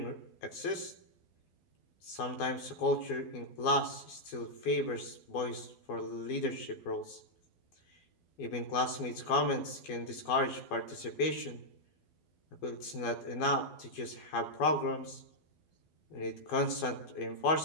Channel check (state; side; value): late; right; 12 ms